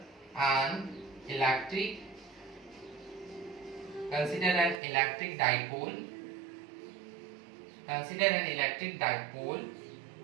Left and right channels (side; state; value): left; drops out; at 4.8 s